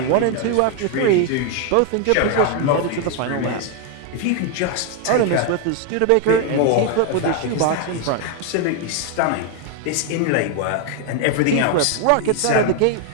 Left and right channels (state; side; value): different; both; correlation 0.01